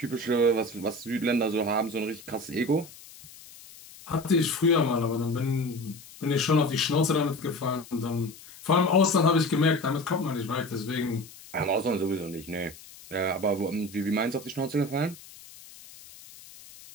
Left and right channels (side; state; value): left; noise; hiss, 19 dB below the sound